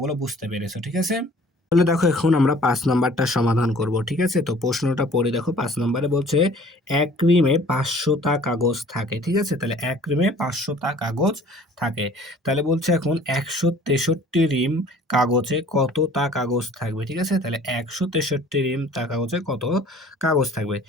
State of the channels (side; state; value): both; normal; correlation 0.51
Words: বুঝতে পেরেছো, ঠিক আছে? তাহলে দেখো এখন আমরা ৫ নাম্বারটা সমাধান করব, ঠিক আছে? তো প্রশ্নটা পড়ে দেখো, ৫ নম্বরে বলছে ১ রিমে ৫০০ টা কাগজ থাকে, ঠিক আছে? তাহলে ১ রিমে ৫০০ টা কাগজ থাকে। তাহলে বলছে এখন ১৬৩ রিম কাগজে কতটা কাগজ থাকবে, ঠিক আছে? তাহলে ১৬৩ রিম তা কাগজে কত কাগজ থাকবে